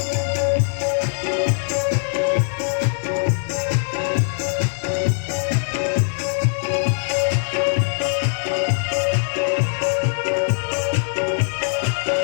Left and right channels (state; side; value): silent; right; digital silence